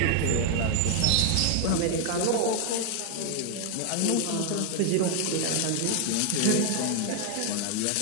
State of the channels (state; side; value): different; both; correlation 0.01